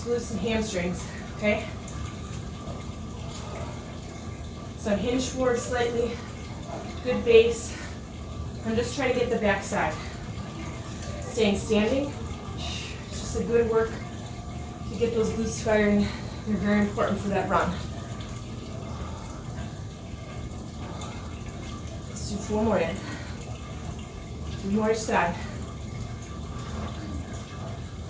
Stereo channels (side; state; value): both; identical; correlation 1.00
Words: glutes and hamstrings, okay? So I'm hinged forward slightly, good base. I'm just trying to get the back side. Staying standing, it's just a good work to get those glutes firing. They're very important for that run. Let's do 4 more in. 3 more each side.